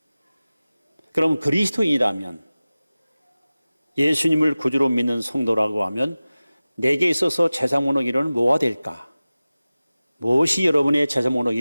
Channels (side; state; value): both; inverted; correlation -0.97